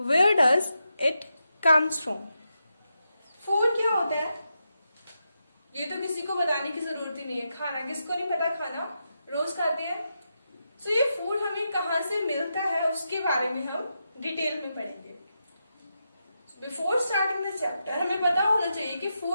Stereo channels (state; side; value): inverted; both; correlation -0.86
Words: does it comes from? Food क्या होता है ये तो किसी को बताने की जरूरत ही नहीं है। खाना किसको नहीं पता, खाना रोज खाते हैं। सो ये फूड हमें कहाँ से मिलता है उसके बारे में हम डिटेल में पढ़ेंगे। बिफोर स्टार्टिंग द चैप्टर हमें पता होना चाहिए कि